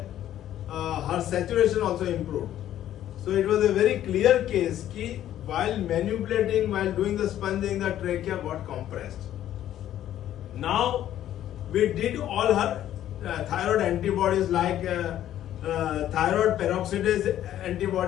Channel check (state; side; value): quieter; right; 11.9 dB